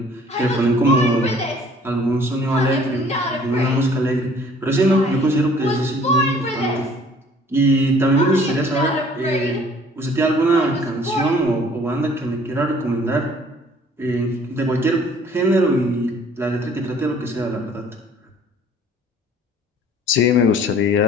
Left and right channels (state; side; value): normal; both; correlation 0.55